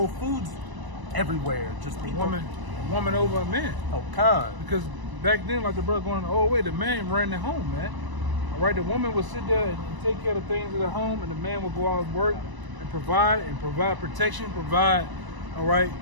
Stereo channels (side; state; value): left; late; 1.0 ms